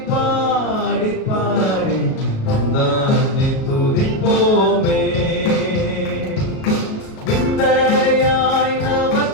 பாடி பாடி தந்தானே துதிப்போமே. விந்தைய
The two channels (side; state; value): right; late; 37 ms